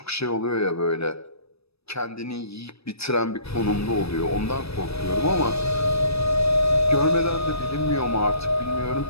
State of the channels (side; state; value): right; late; 0.78 ms